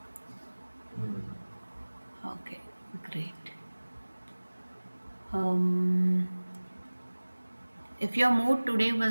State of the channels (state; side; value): inverted; both; correlation -1.00